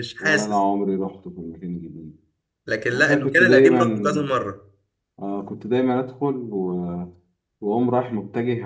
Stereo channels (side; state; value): both; identical; correlation 1.00